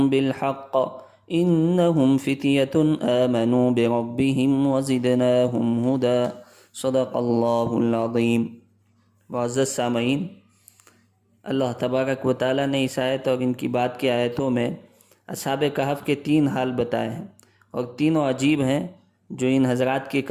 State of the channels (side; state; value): both; identical; correlation 1.00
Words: بالحق انہم فتیۃ آمنوا بربہم وزدناہم ہدی، صدق اللہ العظیم۔ معزز سامعین، اللہ تبارک و تعالیٰ نے اس آیت اور ان کی بعد کی آیتوں میں اصحاب کہف کے تین حال بتائے ہیں، اور تینوں عجیب ہیں جو ان حضرات کی